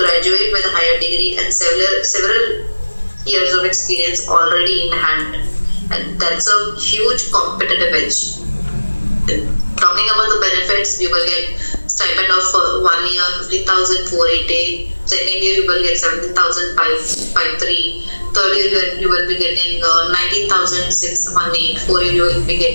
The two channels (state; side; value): inverted; both; correlation -1.00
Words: with a higher degree and several years of experience already in hand. And that's a huge competitive edge. Talking about the benefits, you will get stipend of 1 year 50,480. Second year you will get 17,553. Third year you will be getting 19,618. Fourth year you will be